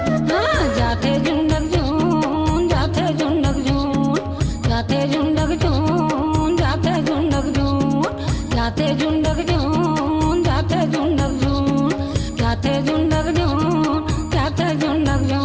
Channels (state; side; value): identical; both; correlation 1.00